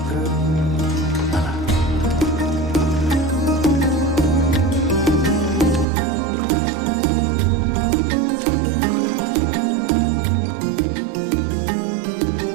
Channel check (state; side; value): drops out; left; at 5.9 s